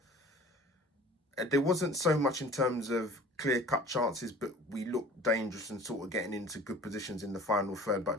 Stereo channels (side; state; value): both; normal; correlation 0.45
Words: wasn't so much in terms of clear-cut chances, but we looked dangerous and sort of getting into good positions in the final third.